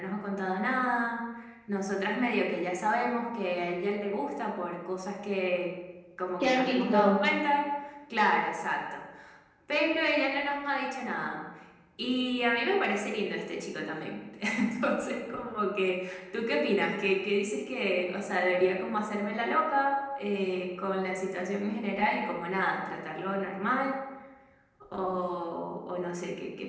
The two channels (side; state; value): both; identical; correlation 1.00